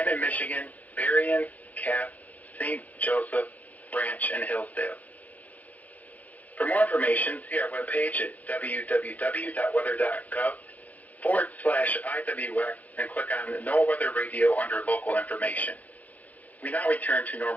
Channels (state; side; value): late; right; 0.078 ms